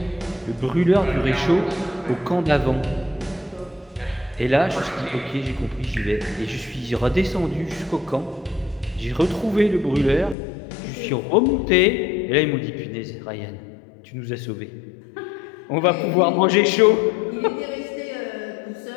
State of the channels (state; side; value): drops out; right; at 10.4 s